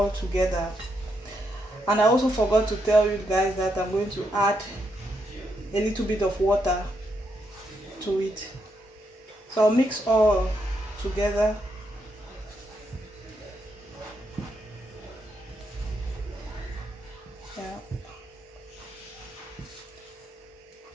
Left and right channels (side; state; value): both; normal; correlation 0.80